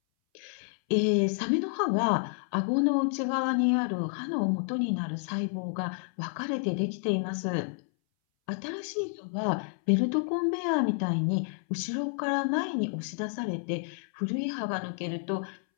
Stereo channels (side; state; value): right; silent; 58 dB below the other